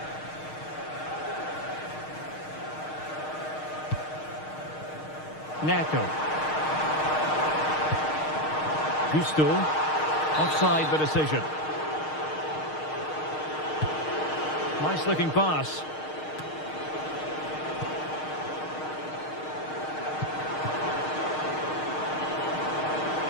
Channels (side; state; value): right; late; 6.5 ms